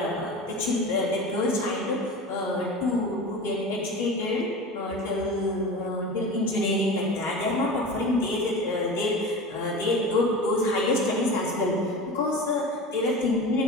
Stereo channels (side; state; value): both; normal; correlation 0.32